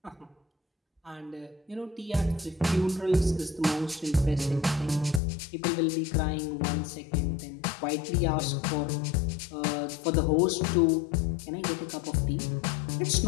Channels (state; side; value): drops out; right; at 5.2 s